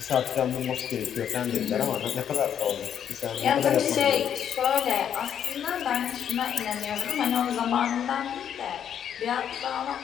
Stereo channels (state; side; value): quieter; right; 9.0 dB